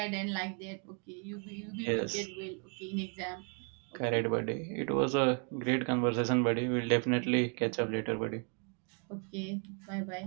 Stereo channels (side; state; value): left; quieter; 38.4 dB